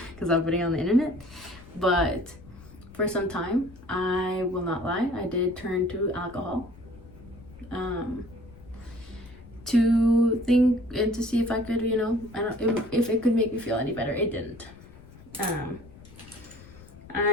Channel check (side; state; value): left; noise; rumble, 20 dB below the sound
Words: because I'm putting it on the internet. But for some time, I will not lie, I did turn to alcohol to think and to see if I could, if it could make me feel any better. It didn't.